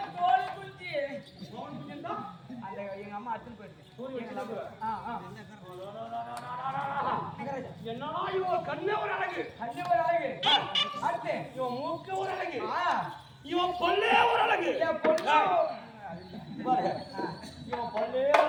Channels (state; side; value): identical; both; correlation 1.00